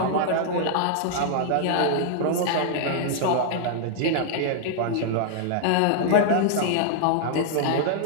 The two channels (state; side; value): different; both; correlation -0.01